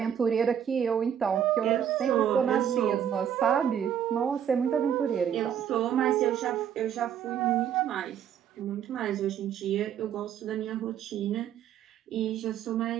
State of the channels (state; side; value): quieter; left; 9.2 dB